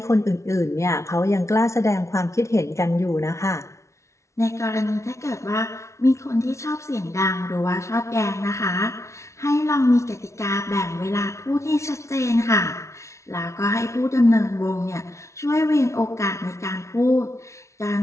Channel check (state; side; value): late; right; 0.14 ms